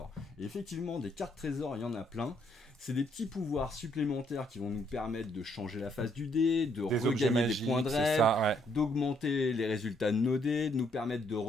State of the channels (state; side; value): normal; both; correlation 0.70